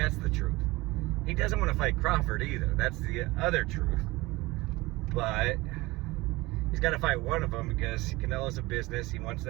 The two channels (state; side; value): quieter; left; 21.2 dB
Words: the truth. He doesn't want to fight Crawford either. That's the other truth. But he's got to fight one of them because Canelo's a business. He wants